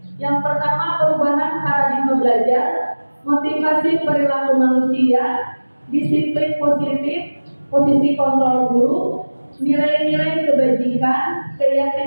yang pertama perubahan paradigma belajar, motivasi perilaku manusia, disiplin positif, posisi kontrol guru, nilai-nilai kebajikan,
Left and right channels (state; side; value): inverted; both; correlation -1.00